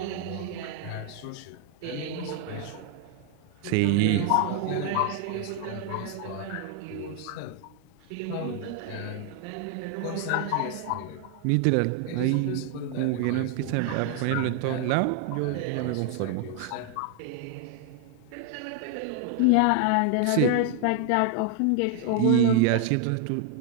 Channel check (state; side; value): different; both; correlation 0.00